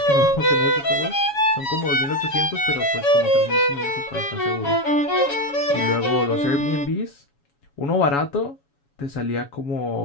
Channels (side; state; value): right; late; 7.1 ms